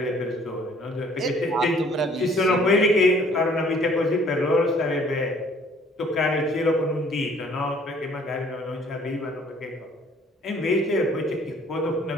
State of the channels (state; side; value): normal; both; correlation 0.57